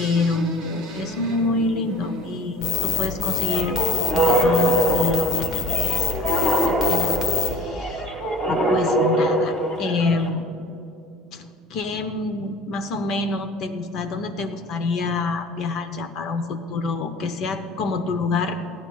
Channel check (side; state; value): both; normal; correlation 0.42